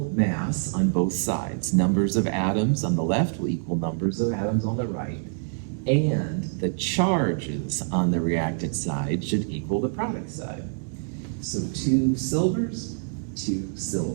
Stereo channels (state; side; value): silent; left; 61 dB below the other